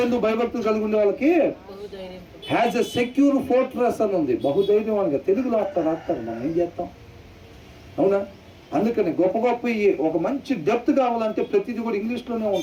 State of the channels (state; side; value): identical; both; correlation 1.00